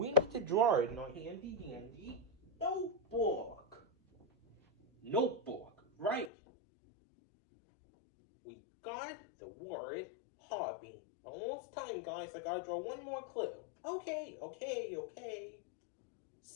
need to draw it in our handy dandy notebook. Notebook, right. We got the word hobby. Almost time, guys. I gotta draw one more clue. Okay.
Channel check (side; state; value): right; drops out; at 6.3 s